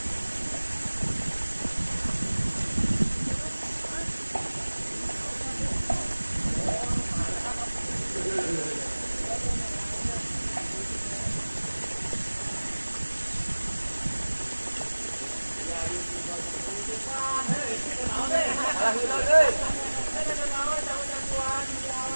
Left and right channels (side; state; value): both; inverted; correlation -1.00